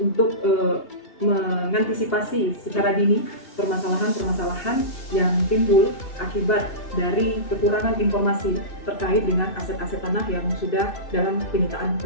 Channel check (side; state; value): right; late; 2.8 ms